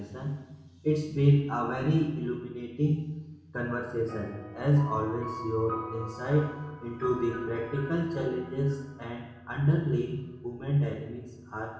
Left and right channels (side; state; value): both; identical; correlation 1.00